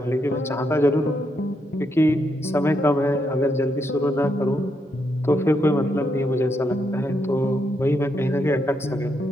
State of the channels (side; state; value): both; normal; correlation 0.79